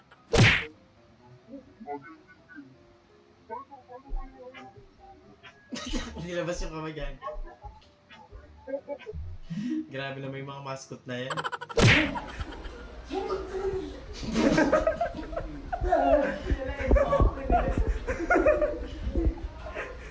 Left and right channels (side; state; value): both; identical; correlation 1.00